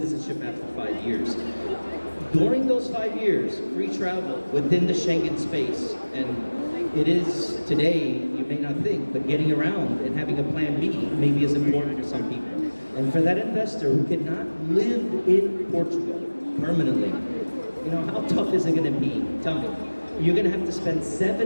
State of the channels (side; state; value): both; inverted; correlation -1.00